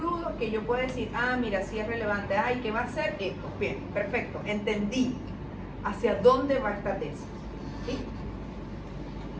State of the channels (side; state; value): both; identical; correlation 1.00